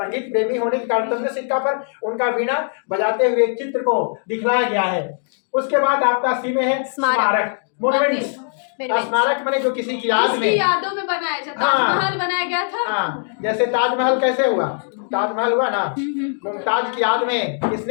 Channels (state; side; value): silent; right; digital silence